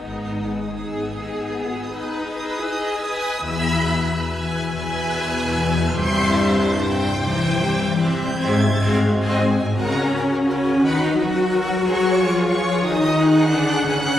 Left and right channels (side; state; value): both; normal; correlation 0.86